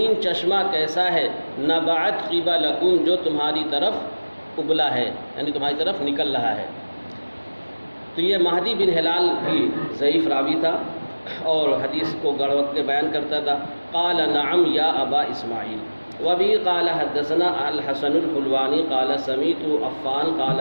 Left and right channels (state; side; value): inverted; both; correlation -1.00